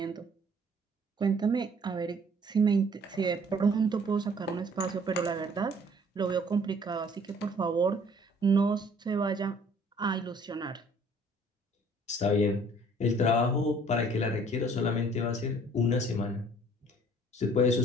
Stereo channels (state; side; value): normal; both; correlation 0.56